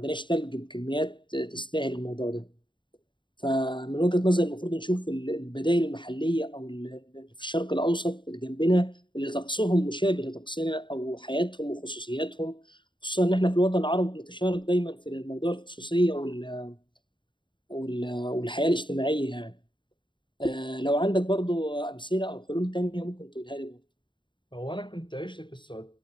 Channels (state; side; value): late; right; 0.23 ms